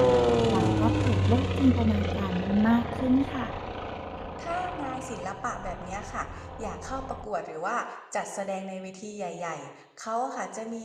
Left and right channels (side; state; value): both; identical; correlation 1.00